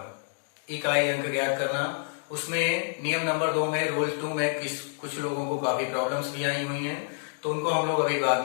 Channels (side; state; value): right; silent; digital silence